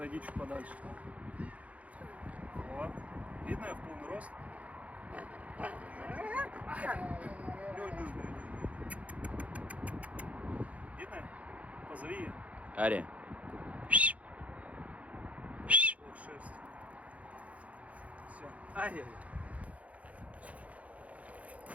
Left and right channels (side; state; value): left; late; 0.067 ms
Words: чуть подальше. Вот. Видно я в полный рост? Видно? Позови ее. Ария. Ох, шерсть. Все. Ай-яй-яй.